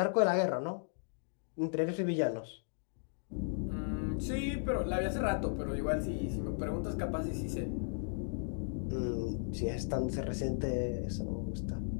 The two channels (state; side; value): silent; right; digital silence